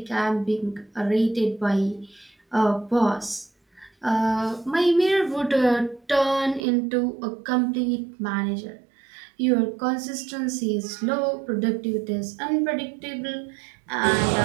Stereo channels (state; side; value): drops out; left; at 6.6 s